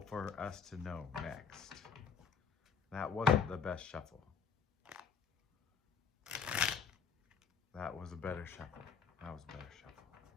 us to know next. That wasn't the best shuffle. That was a better shuffle. That was a better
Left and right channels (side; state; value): right; quieter; 6.4 dB